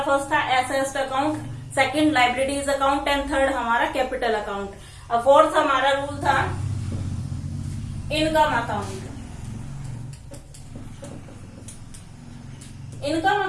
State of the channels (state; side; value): identical; both; correlation 1.00